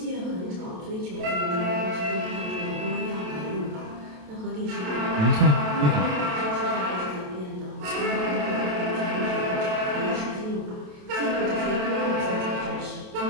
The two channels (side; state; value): left; late; 27 ms